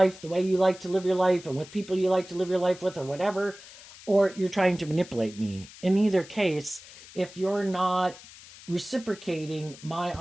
the way you like to live your life and with people you like to live your life with or whatever, or you're trying to manipulate me. In either case, if you're not reciprocating my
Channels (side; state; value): left; noise; hiss, 19 dB below the sound